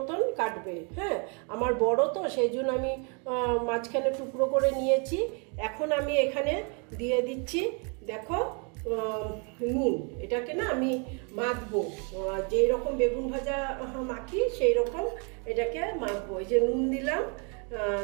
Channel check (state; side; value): quieter; left; 36.0 dB